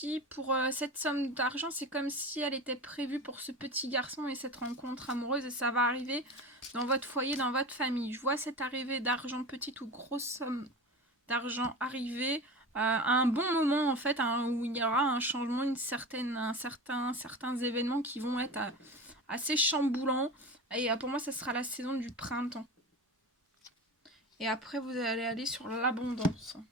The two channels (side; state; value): both; normal; correlation 0.30